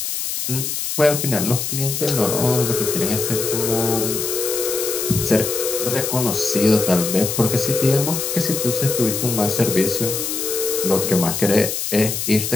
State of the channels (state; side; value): noise; left; hiss, 3 dB below the sound